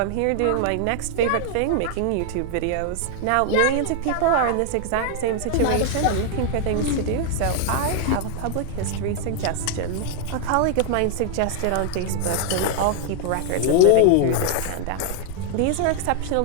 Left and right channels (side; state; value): both; different; correlation 0.00